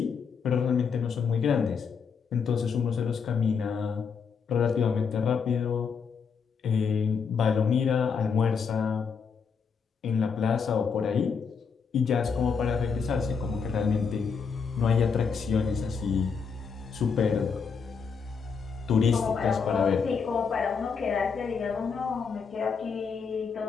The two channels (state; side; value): quieter; right; 5.9 dB